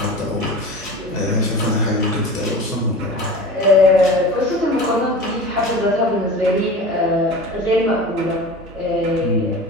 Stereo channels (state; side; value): normal; both; correlation 0.35